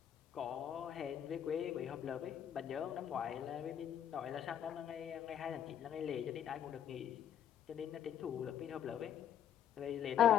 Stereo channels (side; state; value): right; quieter; 9.7 dB